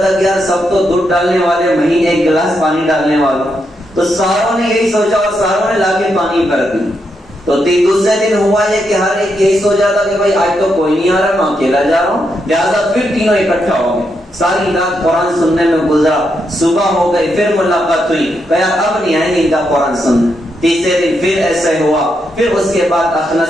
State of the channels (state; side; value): normal; both; correlation 0.81